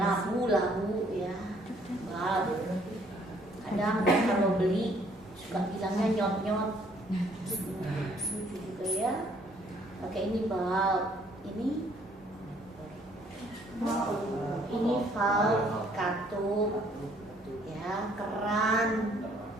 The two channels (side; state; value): both; normal; correlation 0.63